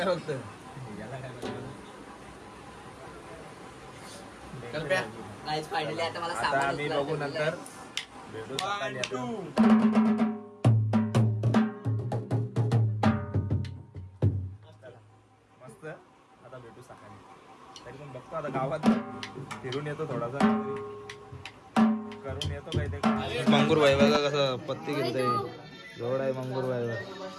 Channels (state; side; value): identical; both; correlation 1.00